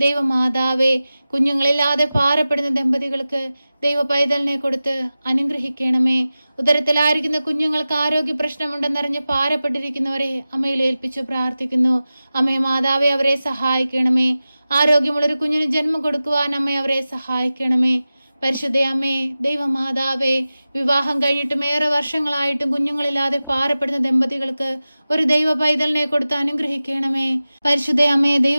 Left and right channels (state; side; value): inverted; both; correlation -0.95